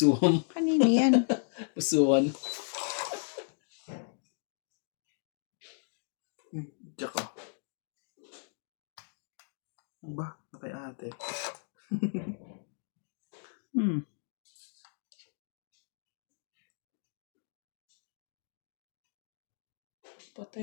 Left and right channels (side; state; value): right; silent; digital silence